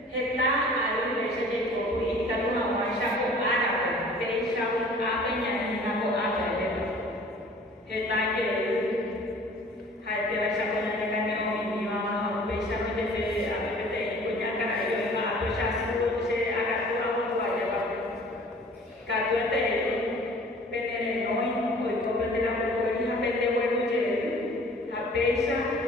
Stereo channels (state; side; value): normal; both; correlation 0.49